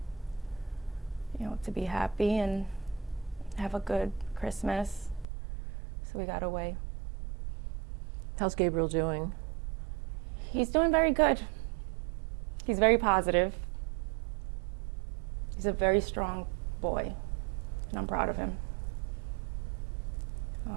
you know, to be happy and have a good Christmas. So we got away. How's Gabriel doing? He's doing very good. He's very positive. He's a very strong boy, and I'm proud of him.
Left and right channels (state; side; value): drops out; left; at 5.2 s